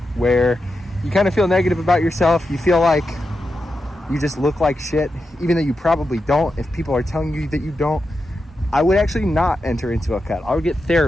where you kind of feel negative about yourself, you feel like you just look like shit, even though you probably don't, if people are telling you that you don't, I would actually not enter into a cut. I would get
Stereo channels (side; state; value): both; normal; correlation 0.88